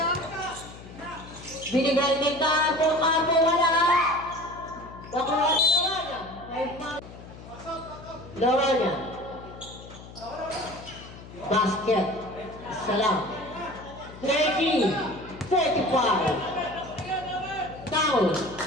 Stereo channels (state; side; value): noise; left; hum, 16 dB below the sound